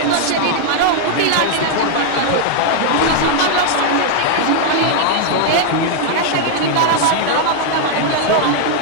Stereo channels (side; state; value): both; different; correlation 0.00